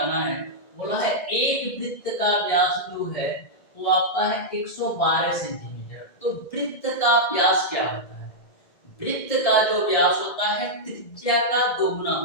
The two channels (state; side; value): late; right; 1.7 ms